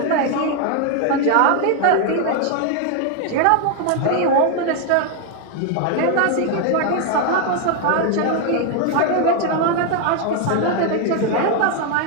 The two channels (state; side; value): different; both; correlation 0.00